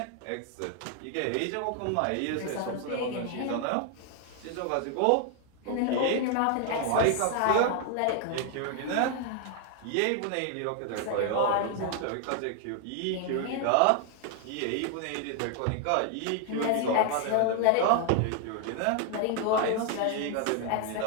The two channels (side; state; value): both; different; correlation 0.00